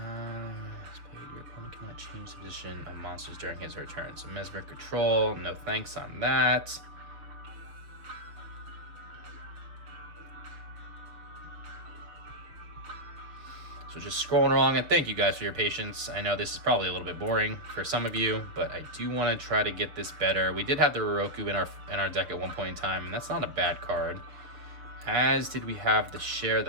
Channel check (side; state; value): left; late; 6.5 ms